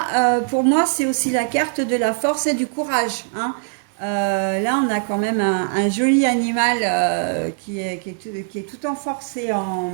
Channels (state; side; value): silent; left; digital silence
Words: pour moi, c'est aussi la carte de la force et du courage, hein. Là, on a quand même un joli animal qui est tout en force et